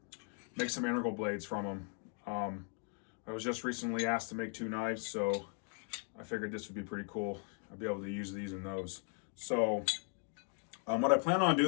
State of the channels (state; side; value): quieter; right; 39.5 dB